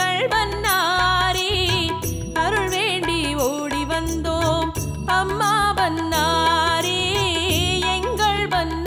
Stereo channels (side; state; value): both; identical; correlation 1.00